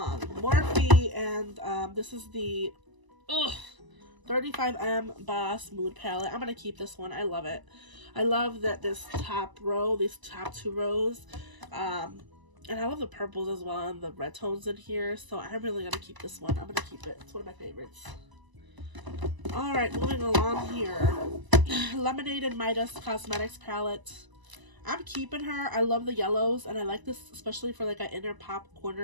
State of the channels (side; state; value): left; late; 1.0 ms